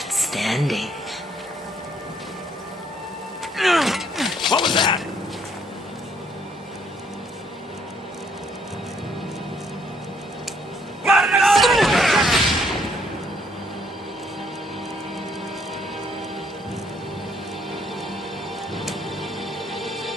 standing. What was that?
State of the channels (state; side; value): normal; both; correlation 0.67